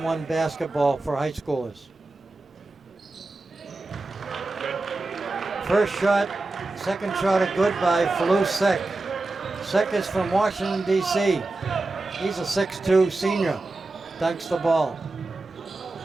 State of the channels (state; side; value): quieter; left; 3.2 dB